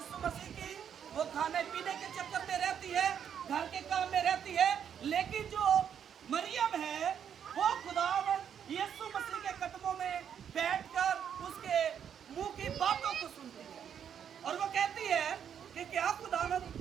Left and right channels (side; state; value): left; quieter; 8.4 dB